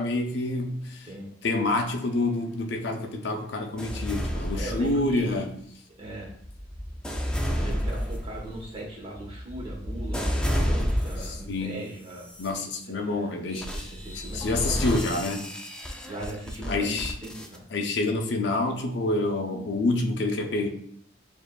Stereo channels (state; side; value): normal; both; correlation 0.55